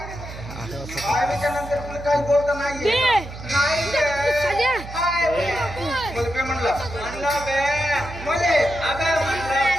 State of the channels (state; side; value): noise; right; hum, 12 dB below the sound